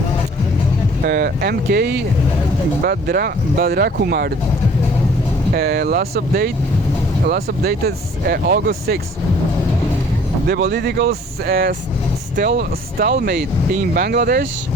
MK Badrakumar. Last updated August 6. The political stalemate in Bangladesh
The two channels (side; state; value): both; normal; correlation 0.54